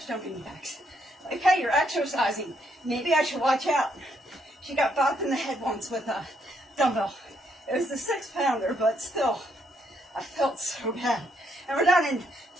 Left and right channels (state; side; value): normal; both; correlation 0.74